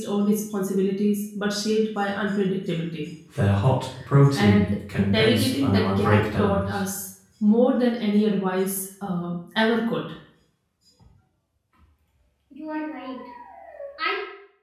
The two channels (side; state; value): both; identical; correlation 1.00